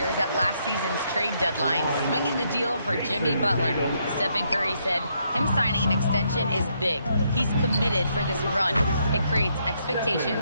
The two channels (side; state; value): both; inverted; correlation -0.75